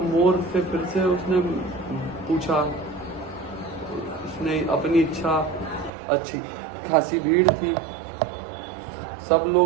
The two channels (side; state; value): left; drops out; at 5.9 s